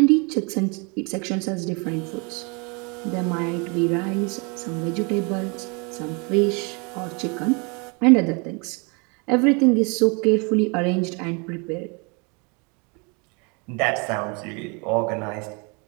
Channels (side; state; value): left; quieter; 32.0 dB